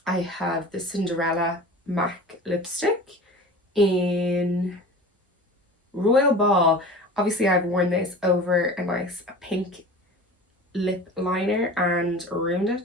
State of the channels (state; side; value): normal; both; correlation 0.37